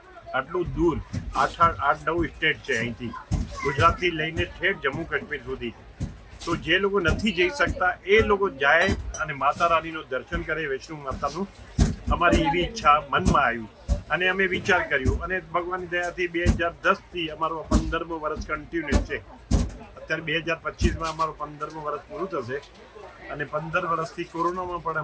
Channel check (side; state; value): both; identical; correlation 1.00